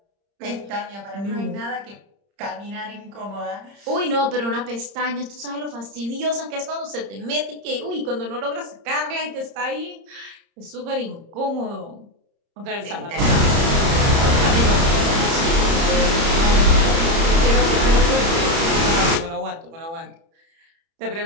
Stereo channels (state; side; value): late; left; 30 ms